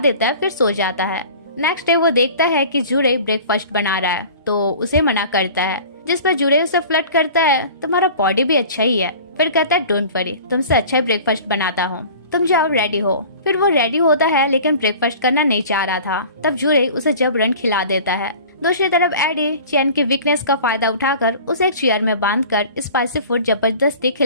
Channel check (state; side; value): inverted; both; correlation -0.42